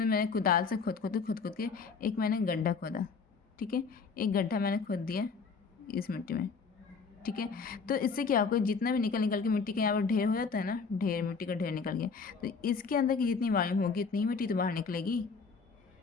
मैंने कुदाल से खोद के एक मैंने गड्ढा खोदा, ठीक है, एक गड्ढा मैंने खोद दिया इस मिट्टी में, ठीक है। तो इससे क्या होगा, जितना भी निकल के मिट्टी का यहाँ पर ढेर हो जाता है ना, ढेर मिट्टी का ढेर निकल गया, तो इसके अंदर की जितनी वॉल्यूम होगी उतनी ही मिट्टी तो बाहर निकलेगी,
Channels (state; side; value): quieter; right; 5.1 dB